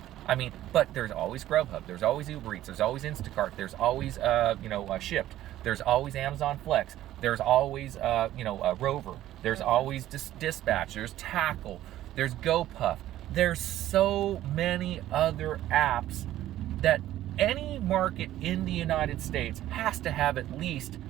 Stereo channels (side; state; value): left; quieter; 13.6 dB